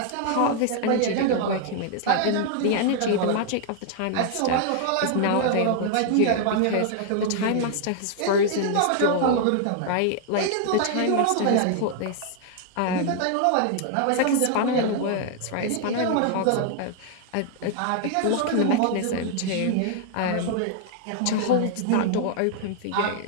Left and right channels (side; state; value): both; different; correlation 0.00